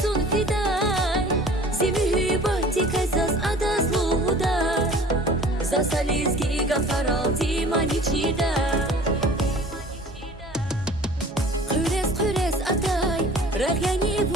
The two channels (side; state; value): both; normal; correlation 0.46